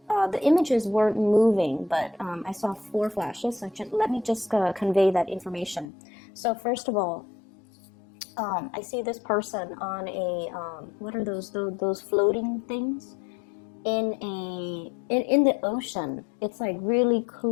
images weren't moving, but I saw four flashes. So let me just convey that information. So first of all, I see this person on a what are those floating things in the ocean. It's like really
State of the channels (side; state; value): right; drops out; at 5.9 s